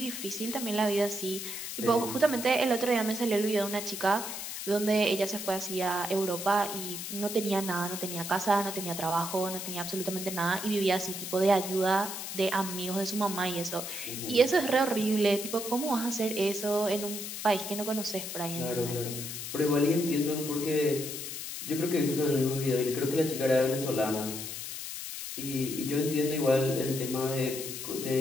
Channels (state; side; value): noise; left; hiss, 7 dB below the sound